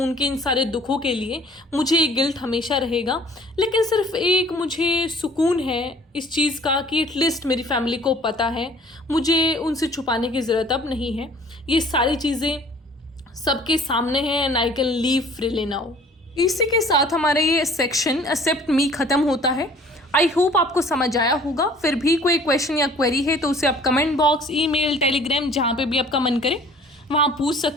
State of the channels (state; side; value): normal; both; correlation 0.52